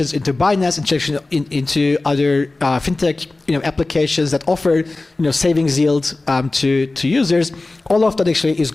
into Binance, integration into other fintech applications that offer savings yield to users. All of that actually is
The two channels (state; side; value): quieter; right; 3.2 dB